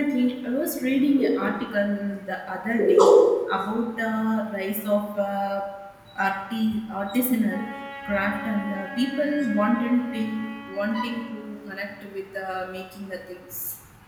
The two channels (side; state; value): both; identical; correlation 1.00